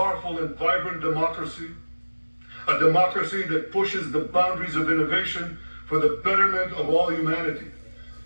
and vibrant democracy, a democracy that pushes the boundaries of innovation for the betterment of all humanity.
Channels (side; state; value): both; inverted; correlation -1.00